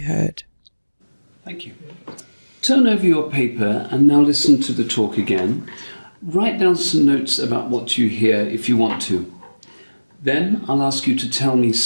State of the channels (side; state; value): both; inverted; correlation -1.00